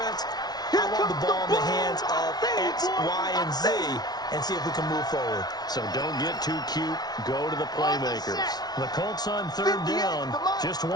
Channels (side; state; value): right; late; 0.19 ms